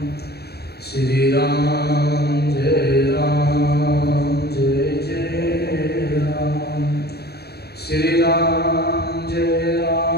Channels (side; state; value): right; late; 0.47 ms